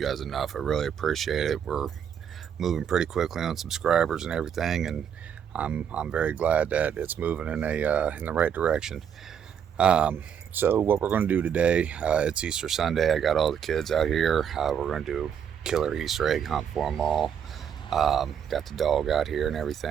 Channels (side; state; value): left; quieter; 8.2 dB